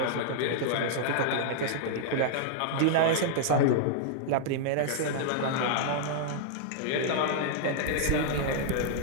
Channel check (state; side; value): different; both; correlation -0.01